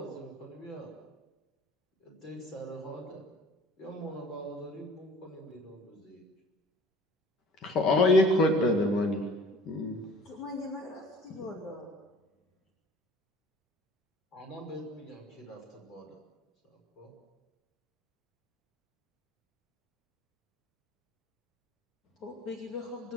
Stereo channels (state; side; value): normal; both; correlation 0.49